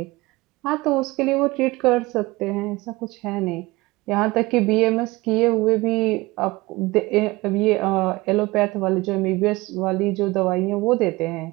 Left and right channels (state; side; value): quieter; left; 21.5 dB